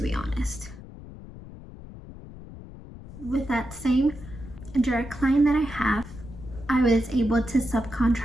honest. With that same direct client that I have, I was able to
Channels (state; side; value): noise; left; rumble, 15 dB below the sound